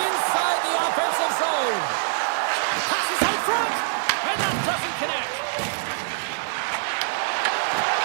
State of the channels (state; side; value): silent; left; digital silence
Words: the offensive zone. Passes out front, and that doesn't connect.